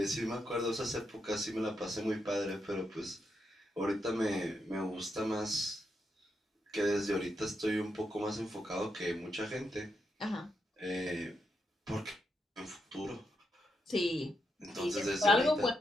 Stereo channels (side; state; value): both; normal; correlation 0.83